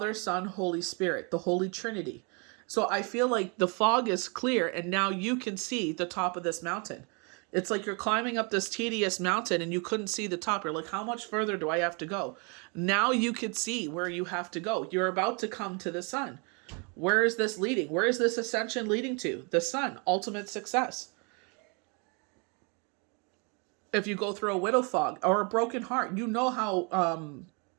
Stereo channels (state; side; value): quieter; left; 33.7 dB